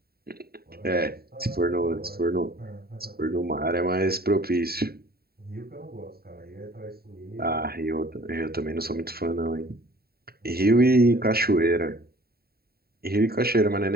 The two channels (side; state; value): left; late; 0.45 ms